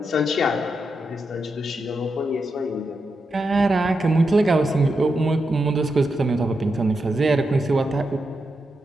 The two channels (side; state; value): both; normal; correlation 0.86